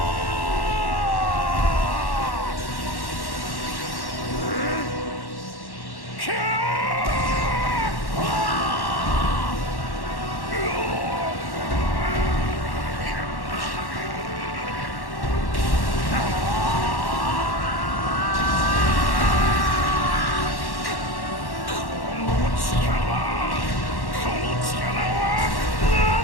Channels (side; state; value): right; late; 1.1 ms